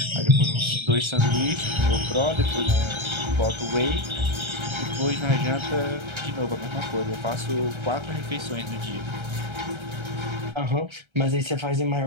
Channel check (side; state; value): left; late; 1.3 ms